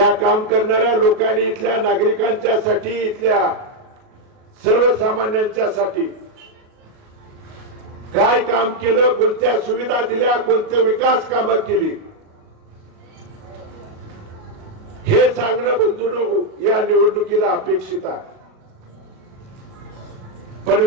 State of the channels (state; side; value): late; left; 38 ms